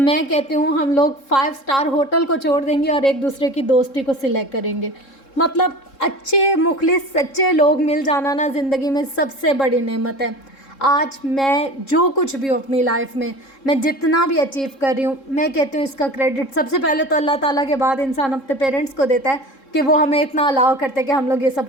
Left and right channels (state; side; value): late; right; 3.7 ms